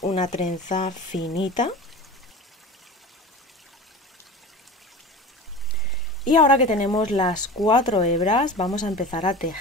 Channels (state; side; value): normal; both; correlation 0.34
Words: una trenza finita. Y ahora que tenemos las 4 hebras, vamos a empezar a